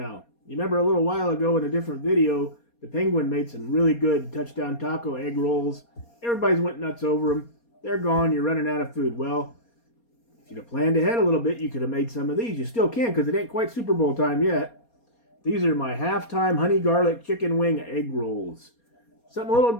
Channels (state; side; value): late; right; 4.2 ms